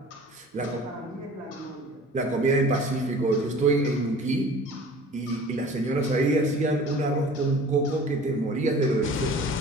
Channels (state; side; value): normal; both; correlation 0.45